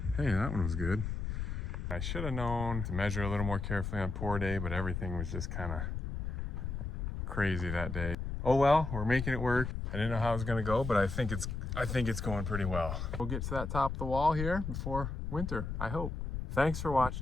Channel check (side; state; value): left; noise; rumble, 4 dB below the sound